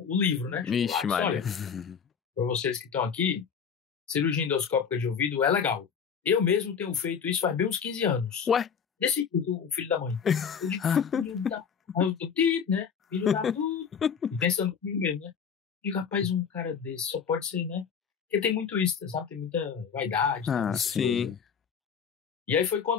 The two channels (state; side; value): quieter; right; 6.9 dB